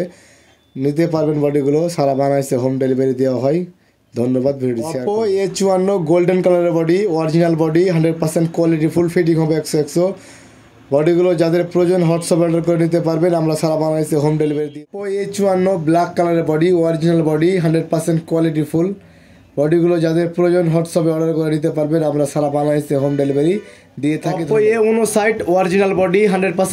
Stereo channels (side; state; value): both; identical; correlation 1.00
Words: নিতে পারবেন। বডিগুলো সারা বাংলাদেশে হোম ডেলিভারি দেওয়া হয়। ধন্যবাদ video share. Oppo A54 golden কালারের body, original body, 100% quality full, fitting হবে 100 বডিগুলো যাদের প্রয়োজন হোয়াটসঅ্যাপে অর্ডার করে নিতে পারবেন, আমরা সারা বাংলাদেশে হোম ডেলিভারি দিই। অপো A54 ব্ল্যাক কালারের body, original body, 100% quality full বডিগুলো যাদের প্রয়োজন হোয়াটসঅ্যাপে অর্ডার করে নিতে পারবেন, আমরা সারা বাংলাদেশে হোম ডেলিভারি দিয়ে থাকি। Oppo A59 original body,